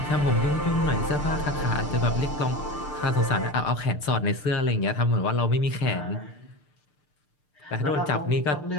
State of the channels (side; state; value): right; late; 6.7 ms